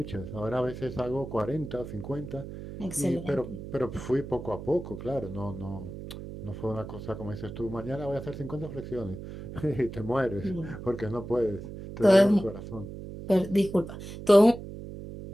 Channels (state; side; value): noise; right; hum, 10 dB below the sound